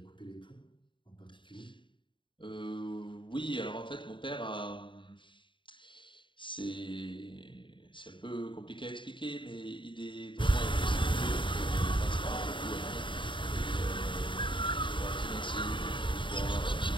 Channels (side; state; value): right; late; 0.24 ms